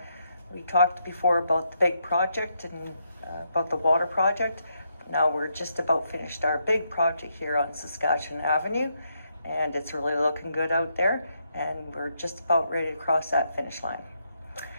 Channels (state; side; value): inverted; both; correlation -0.79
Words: we talked before about the big project and about the water project. Now we're just about finished our big project here on Saskatchewan Avenue, and it's really looking good out there, and we're just about ready to cross that finish line.